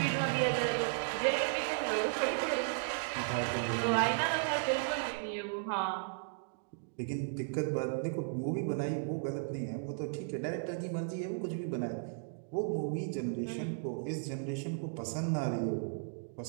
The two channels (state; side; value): silent; left; digital silence